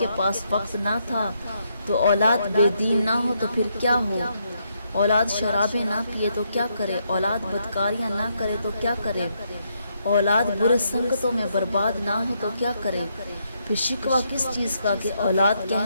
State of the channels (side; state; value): both; inverted; correlation -0.77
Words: پاس وقت نہ تھا تو اولاد بے دین نہ ہو تو پھر کیا ہو؟ اولاد شرابیں نہ پیے تو کیا کرے؟ اولاد بدکاریاں نہ کرے تو کیا کرے؟ اولاد برے سنگتوں میں برباد نہ ہو تو کیا کرے؟ پھر شکوہ کس چیز کا کہ اولاد